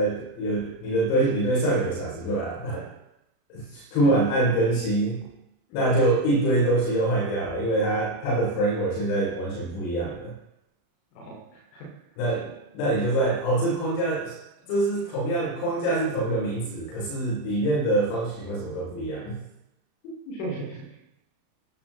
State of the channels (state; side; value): late; right; 35 ms